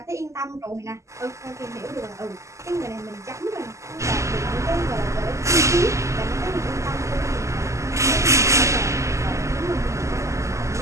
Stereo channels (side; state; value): left; late; 0.14 ms